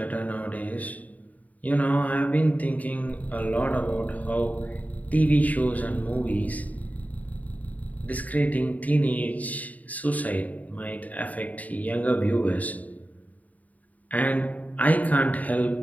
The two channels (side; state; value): right; late; 0.073 ms